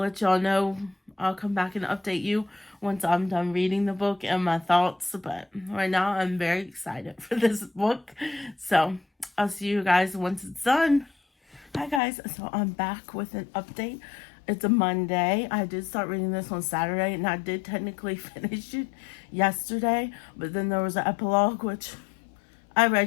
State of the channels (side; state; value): right; drops out; at 12.0 s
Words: y'all know. I'll come back and update you once I'm done reading the book and my thoughts. But right now, I'm very excited for this book. So I'll see you guys once it's done. Hi, guys. So I'm back with an update. It's a Monday. I did start reading this on Saturday, and I did technically finish it yesterday. But then there was an epilogue, which I